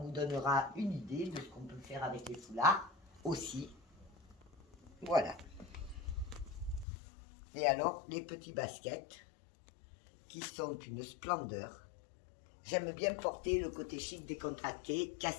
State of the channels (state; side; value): drops out; right; at 6.9 s